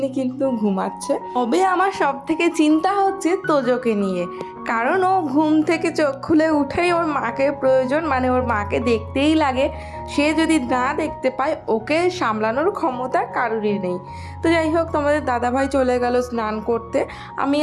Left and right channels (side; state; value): both; identical; correlation 1.00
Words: কিন্তু ঘুমাচ্ছে। তবে আমার সব থেকে চিন্তা হচ্ছে তোজোকে নিয়ে, কারণ ও ঘুম থেকে চোখ খুলে উঠেই ওর মাকে প্রয়োজন, মানে ওর মাকে দেখতেই লাগে। সে যদি না দেখতে পায় ওকে সামলানোর ক্ষমতা কারোরই নেই। তো যাই হোক, তোমাদের দাদাভাই চলে গেল স্নান করতে। আমি